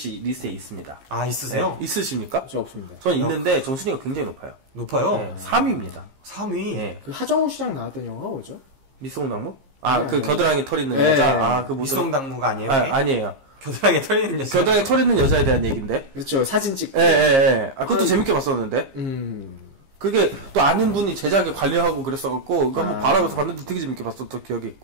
리스트에 있습니다. 아, 있으세요? 네. 있으십니까? 저 없습니다. 저는 있는데 전 순위가 굉장히 높아요. 높아요? 네, 3위입니다. 3위. 네. 그 하정우 씨랑 나왔던 영화가 뭐죠? 미송당무? 아, 네, 그 네. 겨드랑이 털 있는 네. 여자. 아, 그 미송당무가 아니에요? 아, 그게? 아니에요. 겨드랑이에 털 있는 여자. 겨드랑이 털 있는 여자에 대한 얘기인데. 그렇죠. 사진 찍고. 예, 예, 예. 아, 그것도 재밌게 봤었는데. 그게 또 아는 분이 제작에 관리하고 그랬어갖고, 그거 한번 바라면서 봤는데 되게 재밌게 봤었던 기억이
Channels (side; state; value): left; late; 15 ms